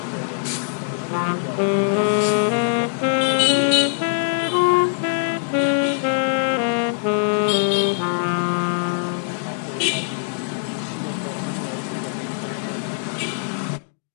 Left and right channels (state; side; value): silent; right; digital silence